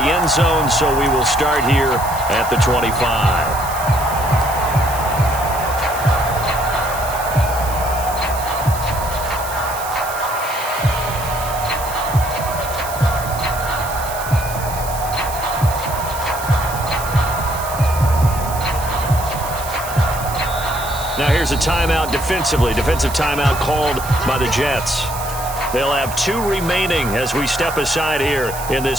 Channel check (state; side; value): noise; right; hiss, 11 dB below the sound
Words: zone, so we will start here at the 25. Now here's a timeout defensively. Defensive timeout called by the Jets. They'll have 2 remaining as we step aside here in